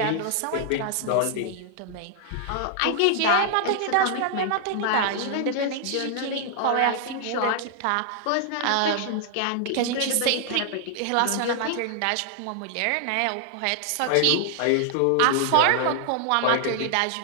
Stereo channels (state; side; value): different; both; correlation 0.00